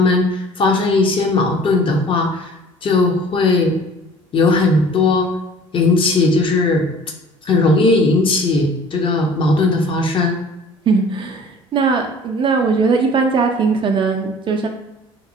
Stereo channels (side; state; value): both; normal; correlation 0.48